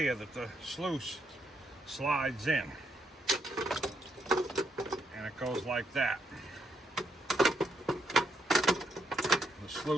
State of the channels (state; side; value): normal; both; correlation 0.77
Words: that the sluice slides in, and it goes like that. The